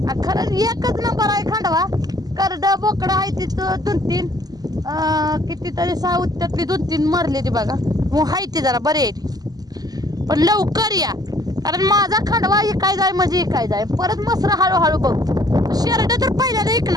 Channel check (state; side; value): late; left; 0.19 ms